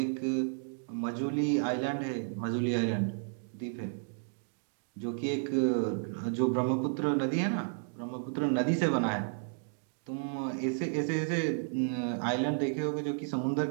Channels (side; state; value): left; silent; digital silence